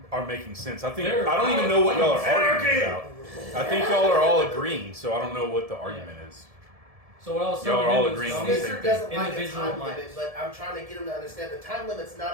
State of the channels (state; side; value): late; left; 1.7 ms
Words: are making sense. I don't even know what y'all are arguing about. I think y'all are all agreeing, so I don't know what the argument is. So what I was y'all are all agreeing on the same Spencer thing. doesn't like a time limit, but I'm trying to get him to understand the time limit's